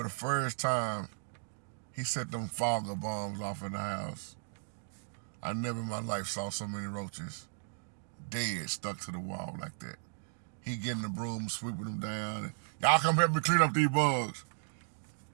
the first time he set them fogger bombs off in the house. I never in my life saw so many roaches dead, stuck to the wall like that. He getting the broom, sweeping them down. And, y'all come help me clean up these bugs.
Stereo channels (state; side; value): silent; left; digital silence